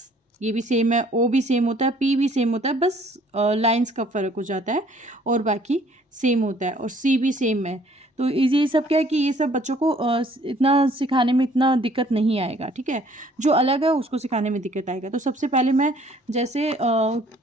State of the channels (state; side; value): normal; both; correlation 0.59